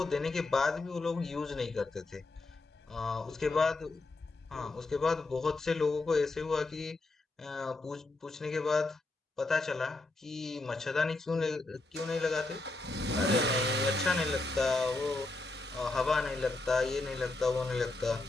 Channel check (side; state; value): right; quieter; 3.1 dB